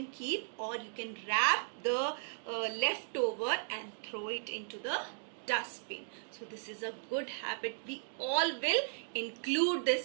keep, or you can wrap the leftover and throw it into the dustbin. So this is a good habit. We all will include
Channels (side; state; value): left; silent; digital silence